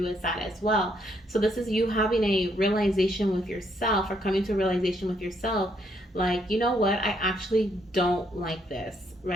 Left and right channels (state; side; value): normal; both; correlation 0.72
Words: as that as well. So this is you having a realization with yourself, or coming to a realization with yourself, like, you know what, I actually don't like this,